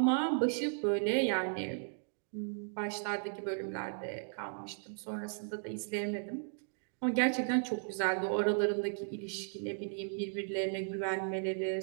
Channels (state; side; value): silent; left; digital silence